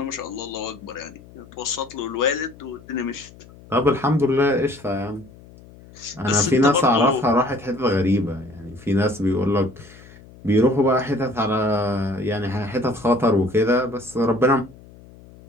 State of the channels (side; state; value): left; noise; hum, 22 dB below the sound